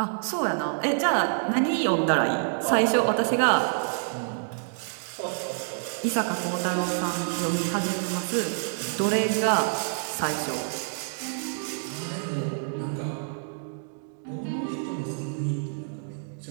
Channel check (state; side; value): silent; left; digital silence